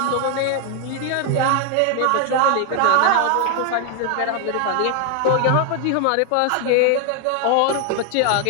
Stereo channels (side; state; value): both; different; correlation 0.00